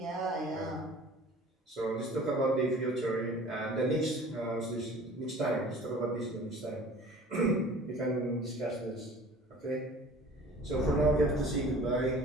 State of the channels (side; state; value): both; normal; correlation 0.45